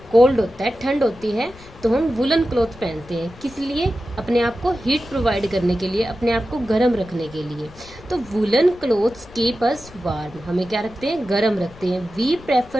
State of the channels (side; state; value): left; noise; rumble, 21 dB below the sound